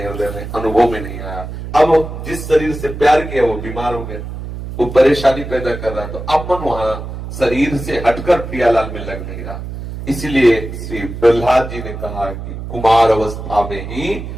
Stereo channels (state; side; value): noise; right; hum, 8 dB below the sound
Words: हृदय में अनुभव में नहीं आया। अब जिस शरीर से प्यार किया वो बीमार हो गया, वो परेशानी पैदा कर रहा, तो अब मन वहां शरीर से हटकर प्रियालाल में लग नहीं रहा। इसलिए श्री प्रहलाद जी ने कहा कि कुमार अवस्था में ही